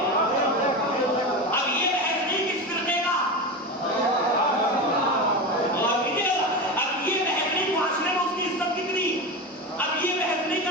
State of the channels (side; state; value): both; normal; correlation 0.21